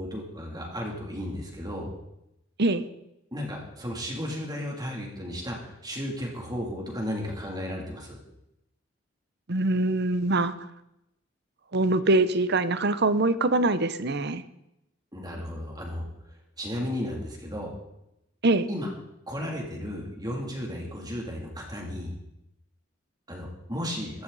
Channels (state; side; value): normal; both; correlation 0.30